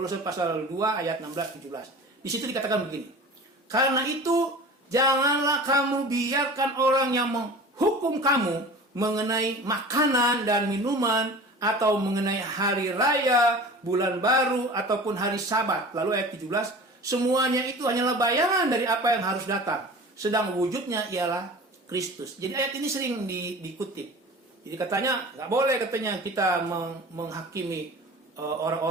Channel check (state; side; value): normal; both; correlation 0.39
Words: pasal 2 ayat 16 17. Di situ dikatakan begini. Karena itu janganlah kamu biarkan orang yang menghukum kamu mengenai makanan dan minuman, atau mengenai hari raya, bulan baru, ataupun hari Sabat. Lalu ayat 17, semuanya itu hanyalah bayangan dari apa yang harus datang, sedang wujudnya ialah Kristus. Jadi ayat ini sering dikutip. Jadi katanya nggak boleh katanya kita menghakimi